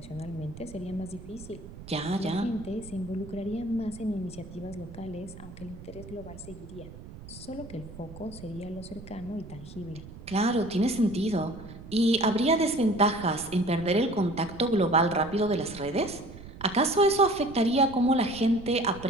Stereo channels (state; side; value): noise; right; rumble, 15 dB below the sound